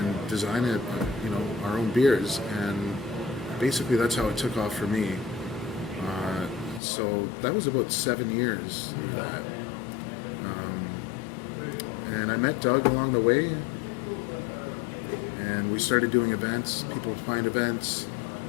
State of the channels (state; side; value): drops out; right; at 6.8 s